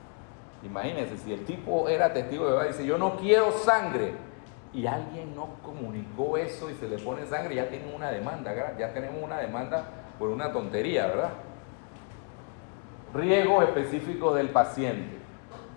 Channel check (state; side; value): quieter; right; 38.8 dB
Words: Imagínense, si el tipo era testigo de Jehová y dice, yo no quiero sangre, y alguien no comunicó eso y se le pone sangre, ya tienen una demanda, ¿verdad? Ya tenemos una demanda por una tontería, ¿verdad? Riesgos específicos del paciente.